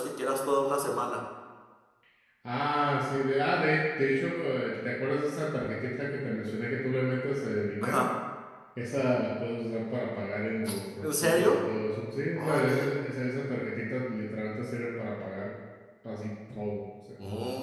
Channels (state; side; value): identical; both; correlation 1.00